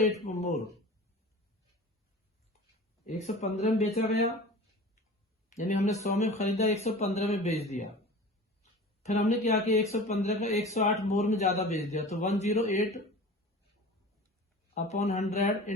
मोर, 115 में बेचा गया, यानी हमने 100 में खरीदा, 115 में बेच दिया। फिर हमने क्या किया, 115 का 108 मोर में ज्यादा बेच दिया, तो 108 अपॉन 100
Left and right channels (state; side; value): normal; both; correlation 0.38